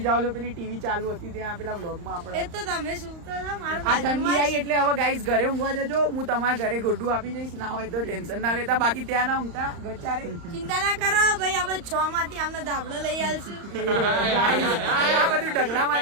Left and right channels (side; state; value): left; late; 35 ms